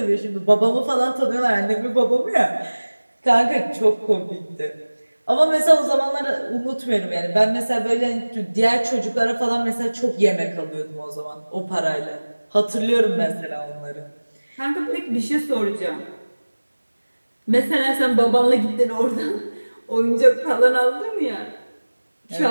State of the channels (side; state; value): both; inverted; correlation -1.00